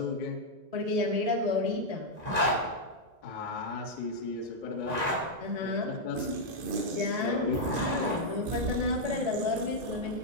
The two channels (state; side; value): late; left; 1.9 ms